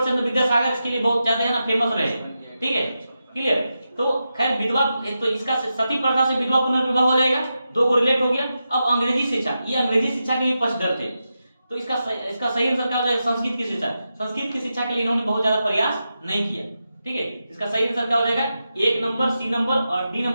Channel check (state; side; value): inverted; both; correlation -0.89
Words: चंद्र विद्यासागर इसके लिए बहुत ज्यादा है ना फेमस रहे, ठीक है, क्लियर। तो खैर विधवा, तो इसका सती प्रथा से विधवा पुनर्विवाह हो जाएगा, दो को रिलेट हो गया। अब अंग्रेजी शिक्षा, ये अंग्रेजी शिक्षा के भी पक्षधर थे, तो इसका सही आंसर क्या हो जाएगा? संस्कृत की शिक्षा। संस्कृत की शिक्षा के लिए इन्होंने बहुत ज्यादा प्रयास नहीं किया, ठीक है। इसका सही आंसर क्या हो जाएगा? 1 नंबर, सी नंबर और डी